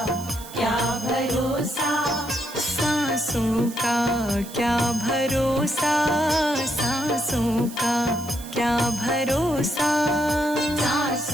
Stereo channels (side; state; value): right; noise; hiss, 16 dB below the sound